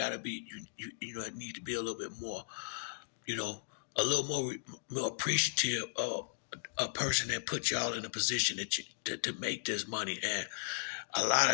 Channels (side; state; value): right; silent; digital silence